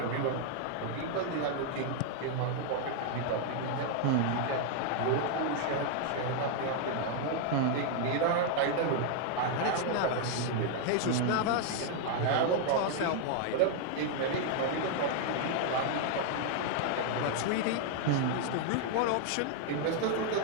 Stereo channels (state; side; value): different; both; correlation 0.00